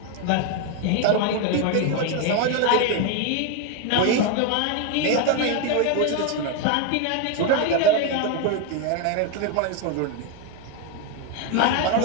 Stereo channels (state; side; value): different; both; correlation 0.01